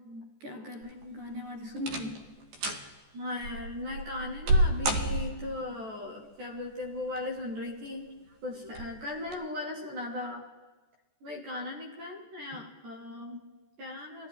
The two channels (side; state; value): left; late; 14 ms